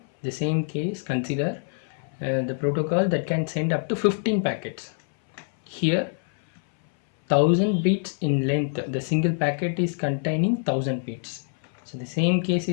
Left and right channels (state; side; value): silent; right; 59 dB below the other